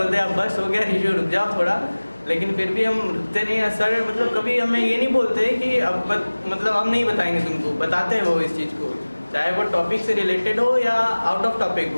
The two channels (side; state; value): both; inverted; correlation -1.00